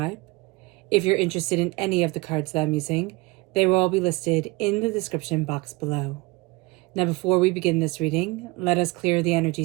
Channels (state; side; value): quieter; left; 23.3 dB